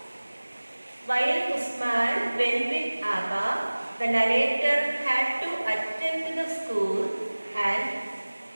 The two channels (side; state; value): both; inverted; correlation -1.00